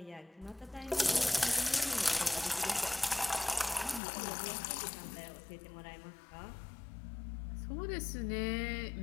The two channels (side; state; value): right; drops out; at 4.0 s